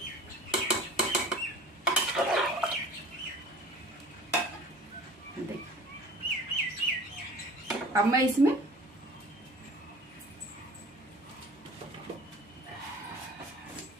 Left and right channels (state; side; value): normal; both; correlation 0.43